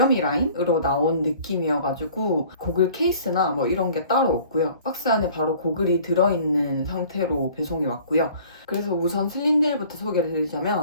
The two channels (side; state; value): both; inverted; correlation -0.51